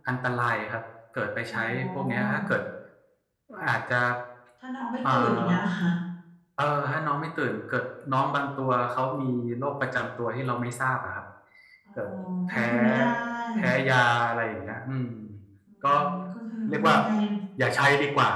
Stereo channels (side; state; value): both; identical; correlation 1.00